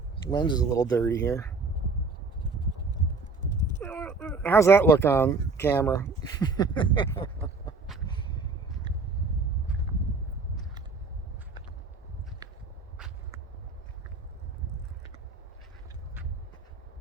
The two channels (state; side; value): quieter; left; 4.0 dB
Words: Lens is a little dirty here. How's that look on camera?